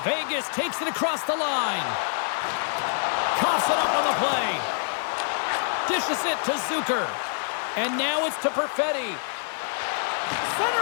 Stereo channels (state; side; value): silent; right; 59 dB below the other